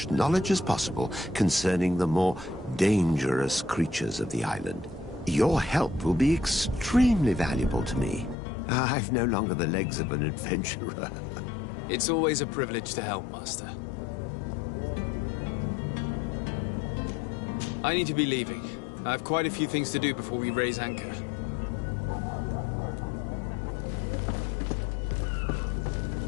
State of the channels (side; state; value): right; drops out; at 8.3 s